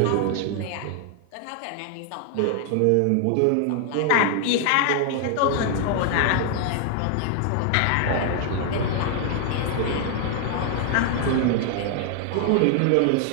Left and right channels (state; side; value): different; both; correlation 0.00